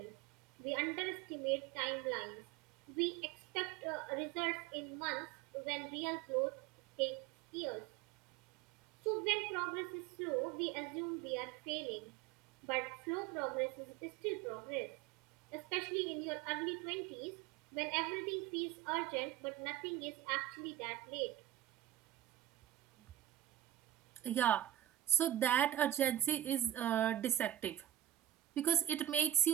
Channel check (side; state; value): left; quieter; 12.9 dB